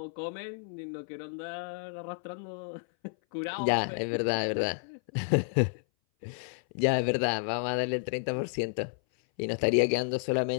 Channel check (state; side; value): silent; right; 57 dB below the other